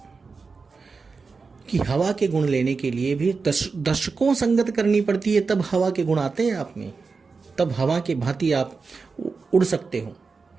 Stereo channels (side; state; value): left; quieter; 4.6 dB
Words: कि हवा के गुण लेने के लिए भी दशकों संगत करनी पड़ती है, तब हवा के गुण आते हैं आप में, तब हवा के भांति आप उड़ सकते हो।